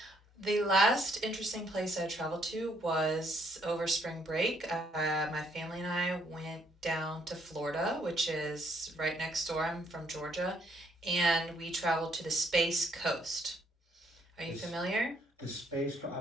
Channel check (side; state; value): both; normal; correlation 0.69